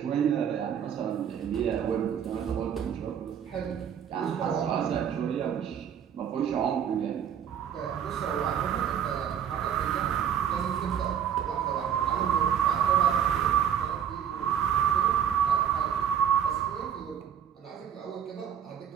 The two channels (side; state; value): left; quieter; 8.9 dB